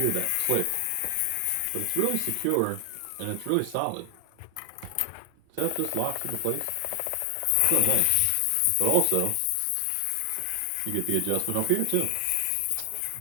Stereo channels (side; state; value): both; different; correlation 0.00